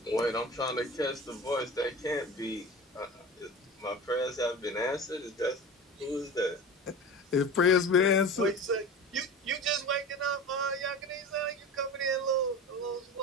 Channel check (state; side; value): normal; both; correlation 0.33